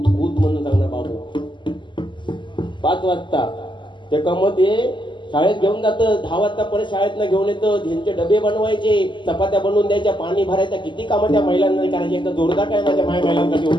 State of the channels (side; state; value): right; late; 0.23 ms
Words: कूद म्हणून सांगणार बाबू 5 वाजता. ते कमते शाळेत घेऊन जातं, 10 वाजता परत शाळेतनं घेऊन येतं, त्यांचे डबे बनवायचे, चपात्या बनवून द्यायच्या, पाणी भरायचं, किती कामं त्या महिलांना करायची. एकदा जोरदार काय माझ्या महिलांना घेऊन